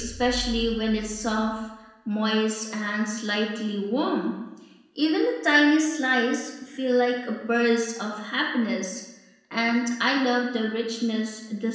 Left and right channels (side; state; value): both; identical; correlation 1.00